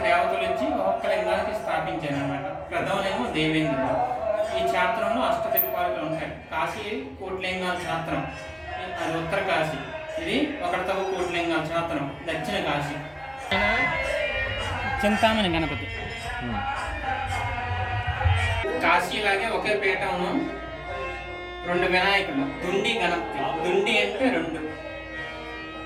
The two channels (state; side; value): identical; both; correlation 1.00